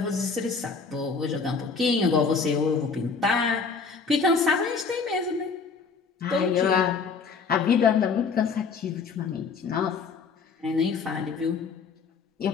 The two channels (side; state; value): right; quieter; 5.1 dB